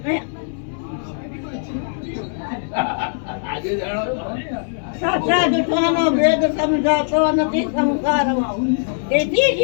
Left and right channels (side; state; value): right; silent; 65 dB below the other